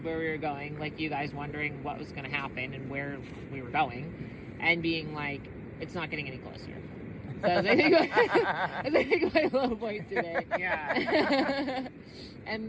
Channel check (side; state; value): both; identical; correlation 1.00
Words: where we were going, like you guys wondering what was going to happen and where we were going, and being like, it's not getting any closer. That's I think my low point today. Yeah.